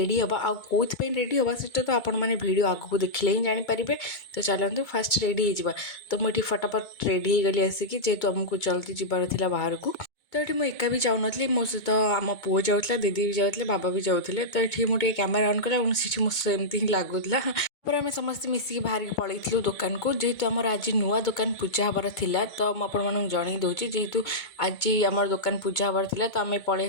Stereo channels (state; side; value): late; right; 2.2 ms